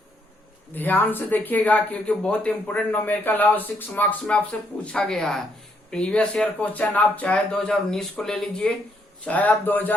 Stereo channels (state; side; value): normal; both; correlation 0.73